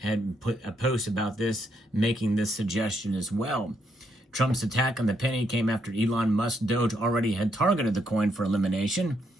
had put a post about this, making this suggestion as well. Trump's attack on the penny came after Elon Musk's Doge already had targeted the coin for elimination.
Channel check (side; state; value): both; normal; correlation 0.77